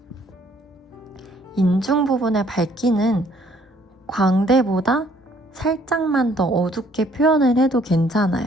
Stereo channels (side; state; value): both; normal; correlation 0.63